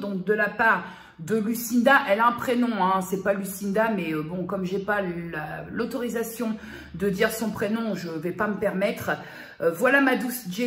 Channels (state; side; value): identical; both; correlation 1.00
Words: de la part de Lucinda. Elle a un prénom, hein, c'est pas Lucinda, mais bon, comme j'ai pas l'autorisation de dire son prénom, je vais pas me permettre. Voilà ma douce